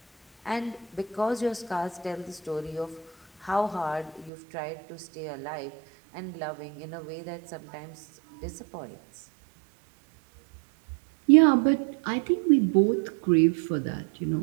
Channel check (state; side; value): drops out; left; at 4.3 s